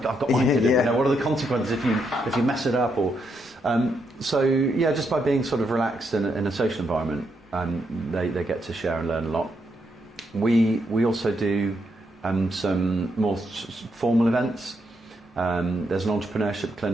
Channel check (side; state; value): both; normal; correlation 0.79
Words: I've got my kid. Yeah. What are the consequences if you mess it up? Or just by being sort of relaxed in a social environment, they get to share and learn a lot. We also do some more formal events. There's an entrepreneurship